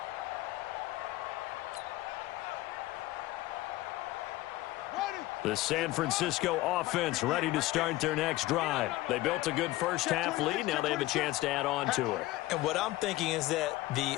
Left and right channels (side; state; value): right; quieter; 17.8 dB